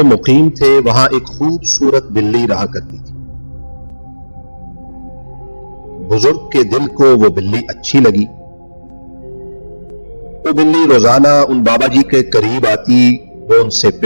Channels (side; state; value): both; inverted; correlation -1.00